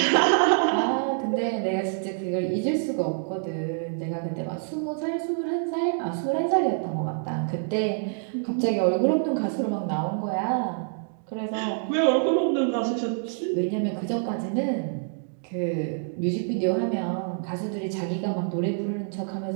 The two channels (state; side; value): silent; left; digital silence